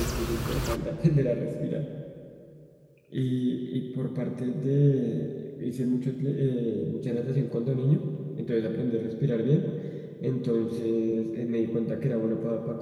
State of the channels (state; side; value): identical; both; correlation 1.00